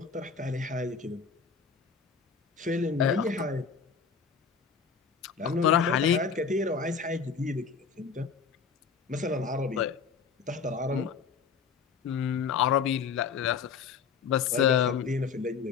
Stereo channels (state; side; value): quieter; right; 6.0 dB